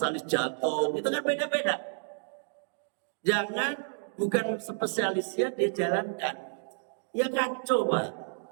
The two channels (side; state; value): left; silent; digital silence